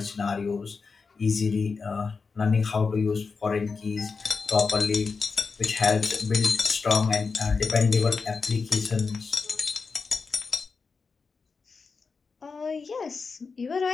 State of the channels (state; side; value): quieter; right; 4.8 dB